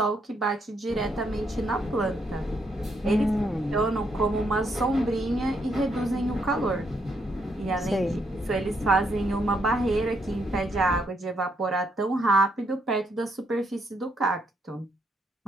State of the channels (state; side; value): normal; both; correlation 0.76